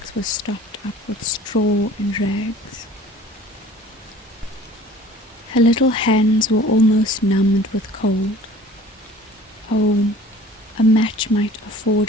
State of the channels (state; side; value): normal; both; correlation 0.47